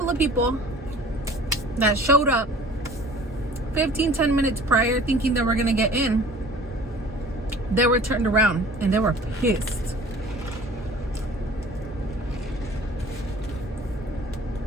of people that showed up 10 minutes prior thinking they were gonna get in. They were turned around and they were pissed.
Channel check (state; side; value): normal; both; correlation 0.47